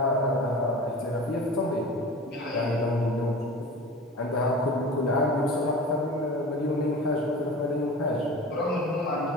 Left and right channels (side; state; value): both; normal; correlation 0.36